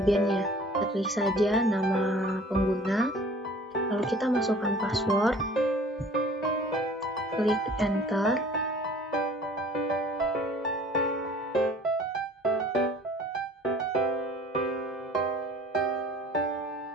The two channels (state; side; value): normal; both; correlation 0.49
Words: Kita klik saja nama pengguna, lalu kita masukkan password, klik enter.